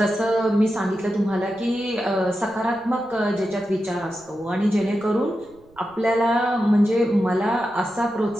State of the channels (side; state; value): right; noise; rumble, 29 dB below the sound